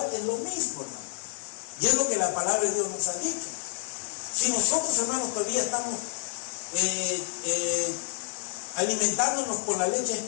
es lo mismo, hermano. Y es lo que la palabra de Dios nos ha dicho. Si nosotros, hermanos, todavía estamos alimentándonos con la leche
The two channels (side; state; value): right; silent; digital silence